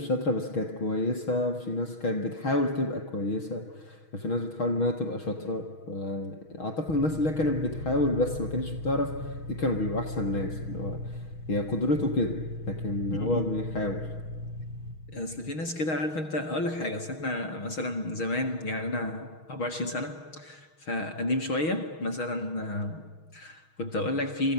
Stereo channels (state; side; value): late; right; 6.3 ms